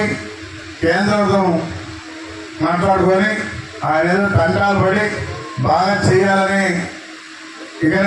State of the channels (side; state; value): both; identical; correlation 1.00